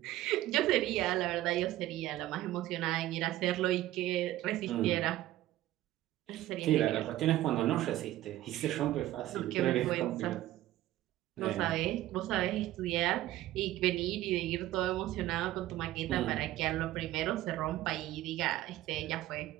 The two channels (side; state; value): left; quieter; 15.0 dB